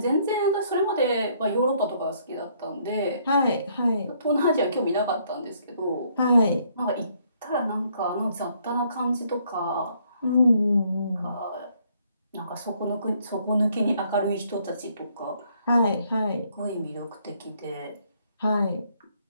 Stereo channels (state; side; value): inverted; both; correlation -0.68